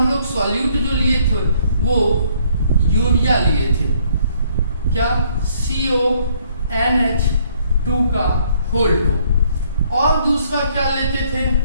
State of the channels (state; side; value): inverted; both; correlation -0.65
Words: लोग सॉल्यूट जो लिए थे वो यूरिया लिए थे, क्या? CONH2 का होल 2। और दूसरा क्या लेते थे?